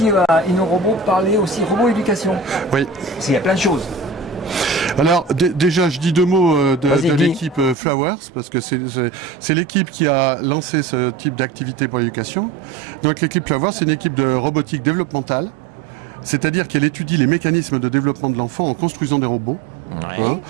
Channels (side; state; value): left; drops out; at 7.8 s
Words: à InnoRobot parler aussi robot éducation. Oui. Parce qu'il y a plein de choses. Alors déjà, je dis deux mots de l'équipe Flowers, parce que c'est l'équipe qui a lancé ce type d'activité pour l'éducation. Donc l'équipe Flowers, c'est une équipe de robotique développementale, c'est-à-dire qu'elle étudie les mécanismes de développement de l'enfant en construisant des robots. Ouais. Hein.